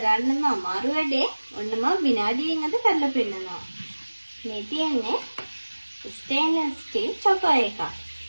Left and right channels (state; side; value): inverted; both; correlation -1.00